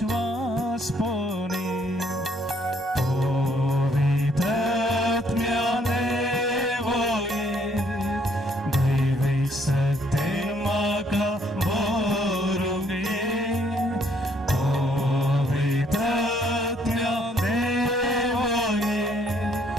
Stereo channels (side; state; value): both; normal; correlation 0.67